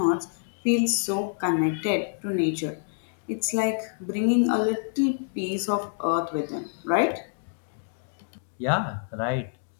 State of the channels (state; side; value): silent; right; digital silence